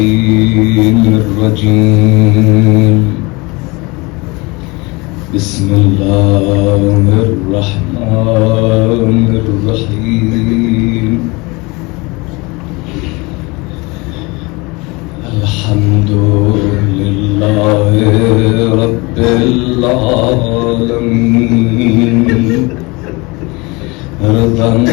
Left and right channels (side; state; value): right; quieter; 25.5 dB